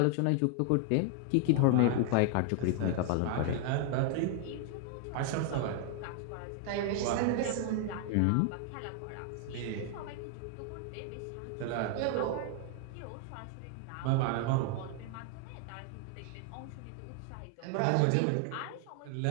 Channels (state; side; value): different; both; correlation 0.00